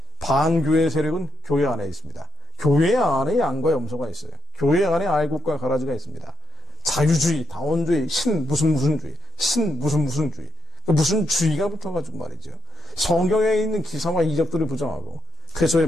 반교회 세력은 교회 안에 있습니다. 교회 안에 양과 염소가 있어요. 교회 안에 알곡과 가라지가 있습니다. 자유주의, 다원주의, 신 무슨 주의, 신 무슨 주의, 무슨 주의가 붙어가지고 말이죠. 성경에 있는 기사와 이적들을 부정하고 그리스도의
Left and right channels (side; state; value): both; normal; correlation 0.80